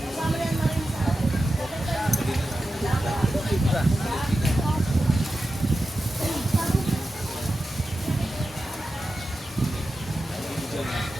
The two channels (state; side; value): normal; both; correlation 0.92